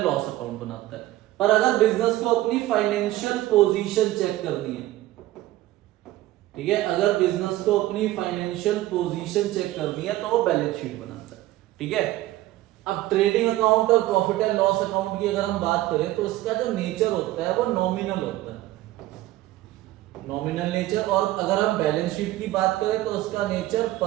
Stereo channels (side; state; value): left; quieter; 16.0 dB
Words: लॉस अकाउंट बनाता है। पर अगर बिजनेस को अपनी फाइनेंशियल पोजीशन चेक करनी है, ठीक है, अगर बिजनेस को अपनी फाइनेंशियल पोजीशन चेक करनी है तो वो बैलेंस शीट बनाता है, ठीक है। अब ट्रेडिंग अकाउंट और प्रॉफिट एंड लॉस अकाउंट की अगर हम बात करें तो इसका जो नेचर होता है वो नॉमिनल होता है, नॉमिनल नेचर। और अगर हम बैलेंस शीट की बात करें तो उसका nature